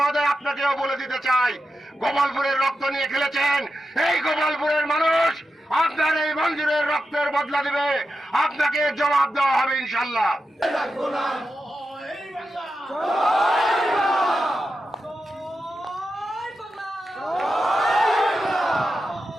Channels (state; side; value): normal; both; correlation 0.90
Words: আপনাকেও বলে দিতে চাই, গোপালপুরের রক্ত নিয়ে খেলেছেন। এই গোপালপুরের মানুষ আপনার এই মঞ্জুরের রক্তের বদলা দিবে, আপনাকে জবাব দেওয়া হবে ইনশাল্লাহ।